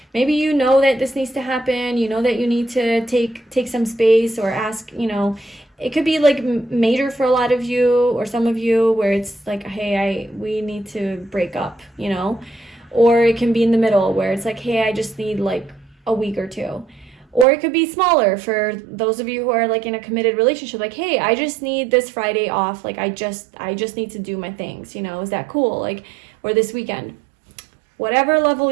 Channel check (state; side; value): drops out; left; at 17.4 s